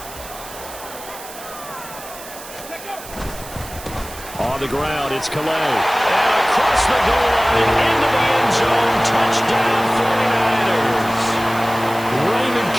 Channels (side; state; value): right; noise; hiss, 15 dB below the sound